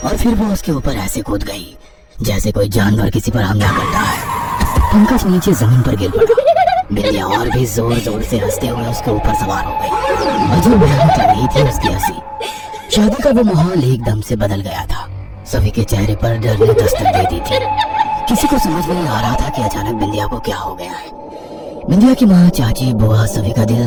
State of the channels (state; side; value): identical; both; correlation 1.00